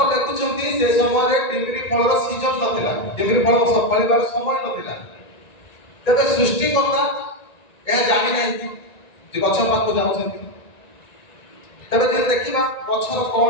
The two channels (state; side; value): late; right; 1.9 ms